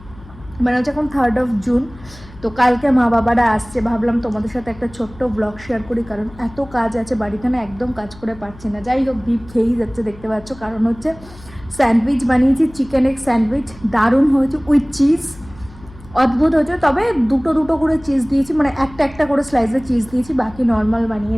মানে হচ্ছে এখন 3rd জুন। তো কালকে মা বাবারা আসছে, ভাবলাম তোমাদের সাথে একটা ছোট্ট ব্লগ শেয়ার করি, কারণ এত কাজ আছে বাড়িতে না, একদম কাজ করে পারছি না। যাই হোক, ডিপ খেয়েই যাচ্ছে, দেখতে পাচ্ছ। কারণ হচ্ছে স্যান্ডউইচ বানিয়েছি, চিকেন এগ স্যান্ডউইচ, দারুণ হয়েছে উইথ চিজ, অদ্ভুত হয়েছে। তবে দুটো দুটো করে চিজ দিয়েছি, মানে একটা একটা করে স্লাইসে চিজ দিয়েছি, বাকি নর্মাল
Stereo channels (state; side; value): noise; left; hum, 20 dB below the sound